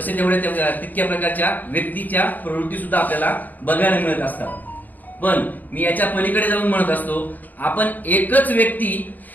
तेवढ्या तितक्या प्रकारच्या व्यक्तीच्या प्रवृत्ती सुद्धा आपल्याला बघायला मिळत असतात. पण मी याच्या पलीकडे जाऊन म्हणत असतो, आपण एकच व्यक्ती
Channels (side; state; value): right; late; 0.085 ms